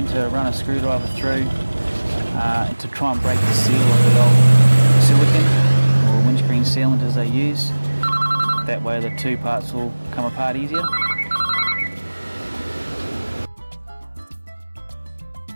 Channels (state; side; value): inverted; both; correlation -1.00